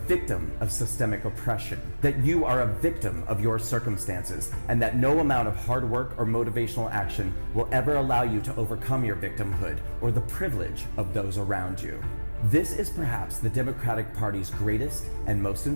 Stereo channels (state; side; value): inverted; both; correlation -1.00